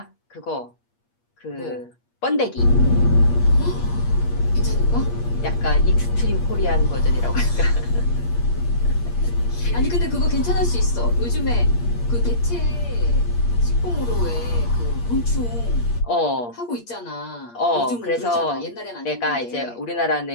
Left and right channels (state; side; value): late; right; 8.5 ms